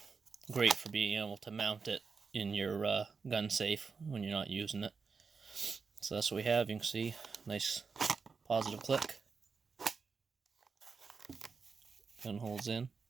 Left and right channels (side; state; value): left; quieter; 5.1 dB